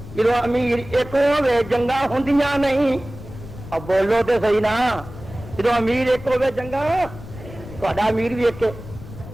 جدو امیر ایک ہوے جنگاں ہوندیاں نہیں اب بولو تے صحیح نا جدو امیر ایک ہوے جنگاں تہاڈا امیر بھی ایک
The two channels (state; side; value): noise; left; rumble, 14 dB below the sound